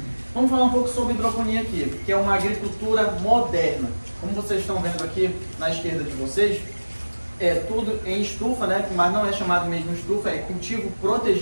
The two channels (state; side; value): inverted; both; correlation -1.00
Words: Vamos falar um pouco sobre hidroponia aqui, que é uma agricultura moderna. Como vocês estão vendo aqui na esquerda de vocês, é tudo em estufa, né? Mas não é chamado mesmo estufa, é cultivo